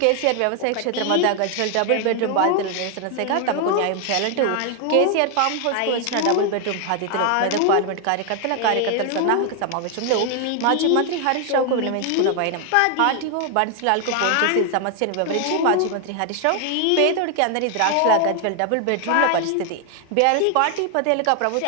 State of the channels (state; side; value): different; both; correlation 0.00